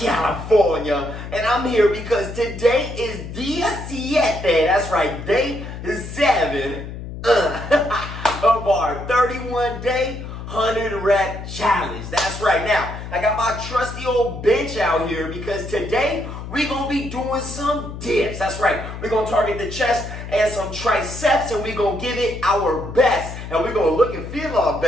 And I'm here because today is Día 7, that's right, day 7 of our 31-day 100-rep challenge. That's right. Now, I got my trusty old bench out here because today we're going to be doing some dips. That's right. We're going to target the chest and some triceps, and we're going to give it our best. And we're going to look and feel our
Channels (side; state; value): left; noise; hum, 9 dB below the sound